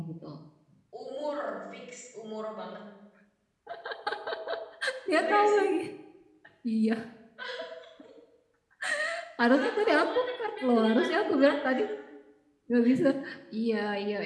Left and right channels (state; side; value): identical; both; correlation 1.00